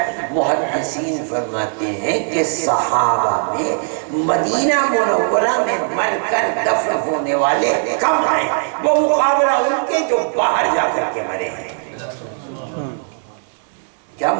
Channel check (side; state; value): left; silent; 55 dB below the other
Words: محدثین فرماتے ہیں کہ صحابہ میں مدینہ منورہ میں مر کر دفن ہونے والے کم ہیں، وہ مقابلہ ان کے جو باہر جا کر کے مرے ہیں۔ کیا